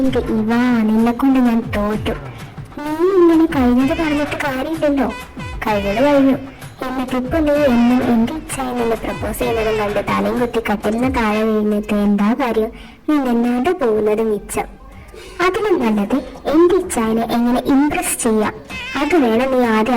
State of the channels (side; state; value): both; identical; correlation 1.00